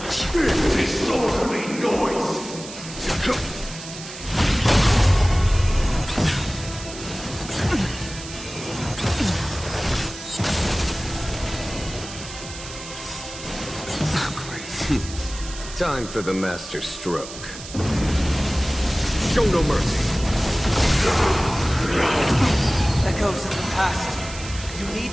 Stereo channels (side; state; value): right; noise; hiss, 13 dB below the sound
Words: Disorderly noise! Time for the master stroke. Show no mercy. Echoes of the past. You need